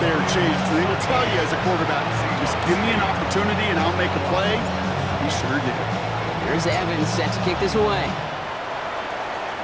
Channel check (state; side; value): identical; both; correlation 1.00